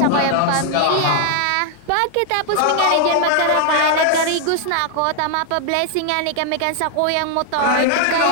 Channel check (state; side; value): different; both; correlation 0.00